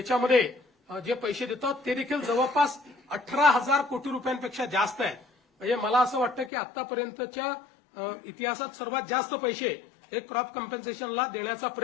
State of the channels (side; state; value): right; drops out; at 6.5 s